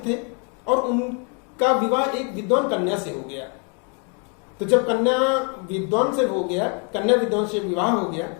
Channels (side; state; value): right; quieter; 37.7 dB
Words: थे और उनका विवाह एक विद्वान कन्या से हो गया। तो जब कन्या विद्वान से विवाह हो गया,